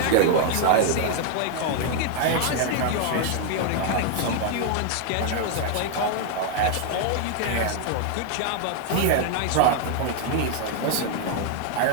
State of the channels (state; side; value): different; both; correlation 0.00